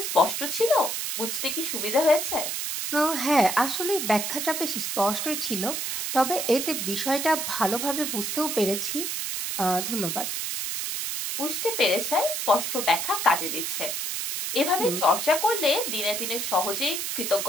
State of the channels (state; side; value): noise; right; hiss, 2 dB below the sound